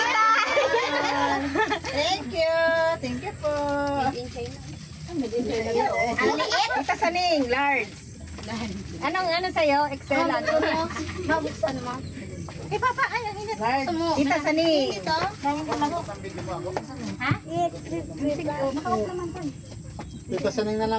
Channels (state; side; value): identical; both; correlation 1.00